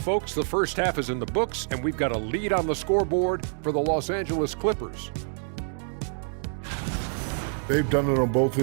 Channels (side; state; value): left; silent; 59 dB below the other